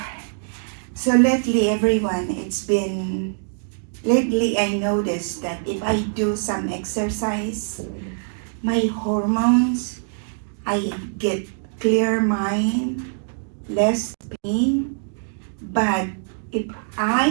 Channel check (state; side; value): silent; left; digital silence